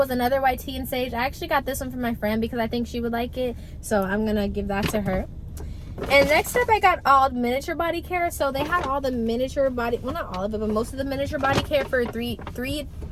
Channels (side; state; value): both; identical; correlation 1.00